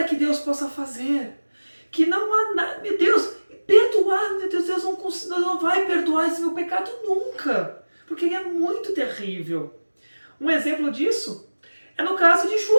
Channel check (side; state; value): both; inverted; correlation -1.00